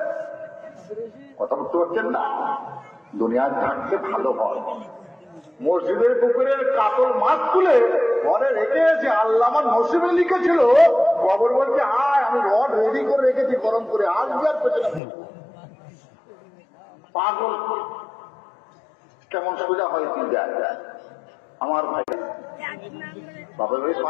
কথা বুঝতে পারছেন না? দুনিয়ার থাকতে ভালো হয়। মসজিদের পুকুরের কাতল মাছ তুলে ঘরে রেখে এসে আল্লাহ আমার নসিবে লিখেছিল, খবর বলছে আয় আমি রড রেডি করে রেখেছি গরম করে, আজকে আর পেছনে পাগল কেমন সোজা হয় কি যায় আমার ভাই। বাপের বাড়ি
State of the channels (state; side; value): drops out; right; at 15.0 s